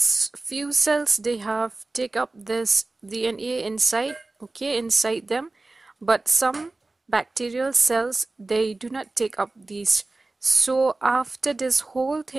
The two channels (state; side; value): quieter; left; 3.2 dB